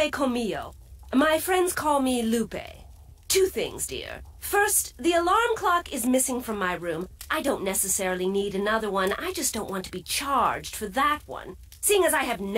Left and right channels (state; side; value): identical; both; correlation 1.00